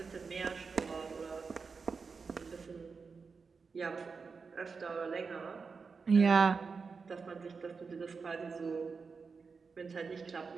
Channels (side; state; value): left; quieter; 5.0 dB